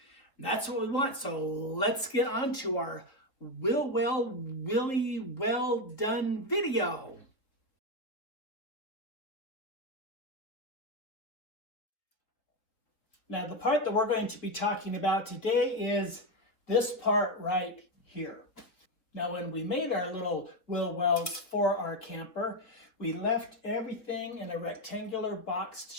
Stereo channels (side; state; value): right; late; 3.6 ms